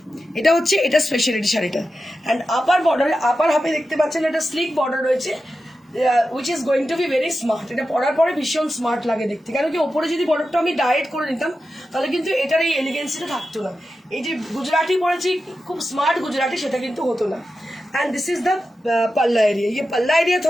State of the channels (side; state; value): both; normal; correlation 0.91